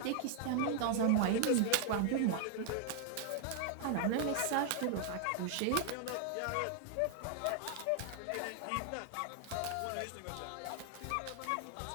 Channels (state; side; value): different; both; correlation 0.00